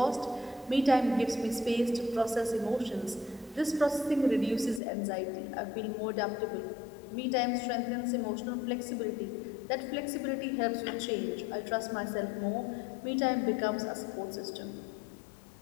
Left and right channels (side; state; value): right; drops out; at 4.8 s